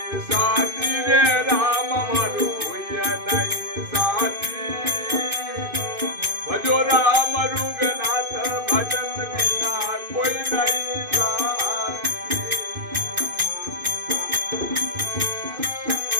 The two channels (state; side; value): late; left; 2.5 ms